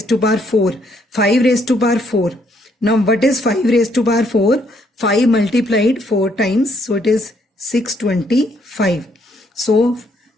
to power 4. 5 raised to power 4. Now what is 5 raised to power 4? 5 multiplied 4 times. So it is 625. So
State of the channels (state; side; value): normal; both; correlation 0.70